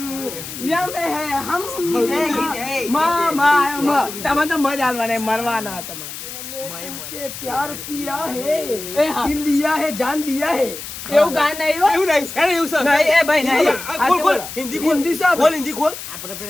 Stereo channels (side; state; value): left; noise; hiss, 10 dB below the sound